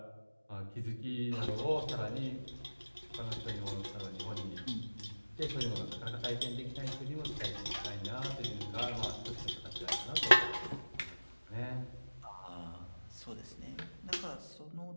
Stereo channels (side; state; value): both; inverted; correlation -1.00